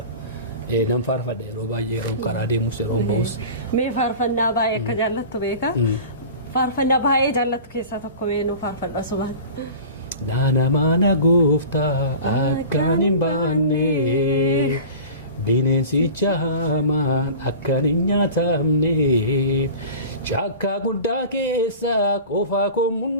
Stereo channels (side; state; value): both; inverted; correlation -0.37